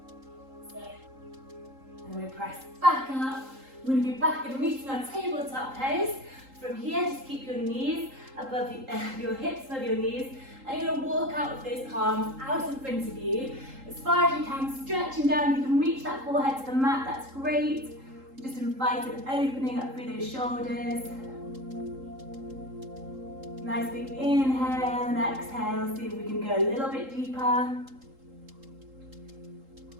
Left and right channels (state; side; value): late; left; 3.8 ms